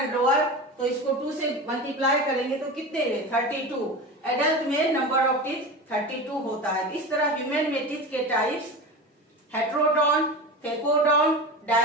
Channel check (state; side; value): normal; both; correlation 0.28